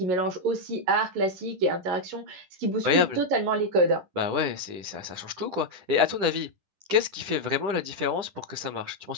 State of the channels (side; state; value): left; late; 10 ms